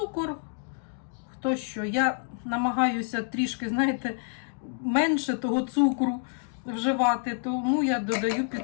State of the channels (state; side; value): silent; right; 59 dB below the other